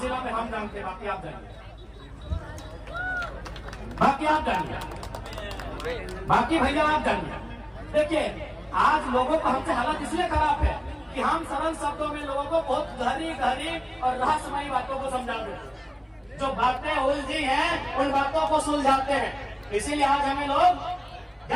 जिला में हम जानते हैं। बाकी आप जानिए, बाकी भैया आप जानिए। देखिए आज लोगों का हमसे हालत इसलिए खराब है कि हम सरल शब्दों में लोगों को बहुत गहरी गहरी और रहस्यमयी बातों को समझा देते। जो बातें उलझी हैं उन बातों को सुलझाते हैं। इसीलिए आज हमें लोग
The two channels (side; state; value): both; identical; correlation 1.00